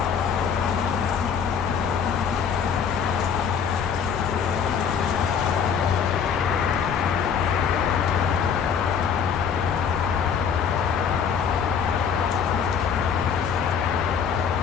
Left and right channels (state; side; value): quieter; right; 7.0 dB